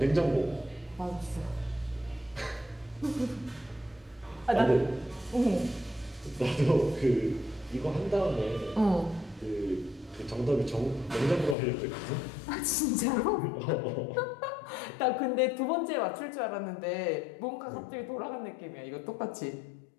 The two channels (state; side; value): drops out; right; at 11.6 s